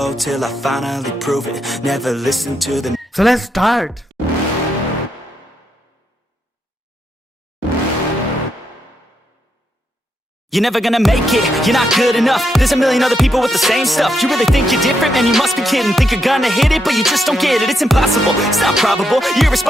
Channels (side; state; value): both; normal; correlation 0.81